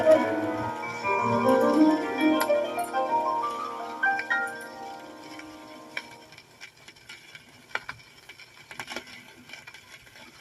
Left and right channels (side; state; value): both; identical; correlation 1.00